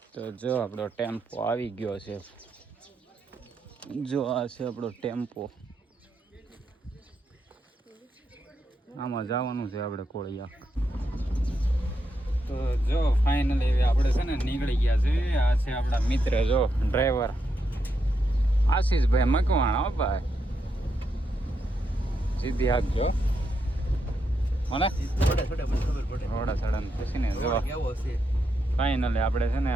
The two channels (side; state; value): both; normal; correlation 0.82